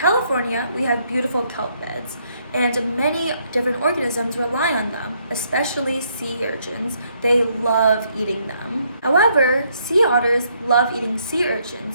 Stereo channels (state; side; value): inverted; both; correlation -0.71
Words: we have beautiful kelp beds, and many different organisms rely on them, especially sea urchins. They love eating them. However, sea otters love eating sea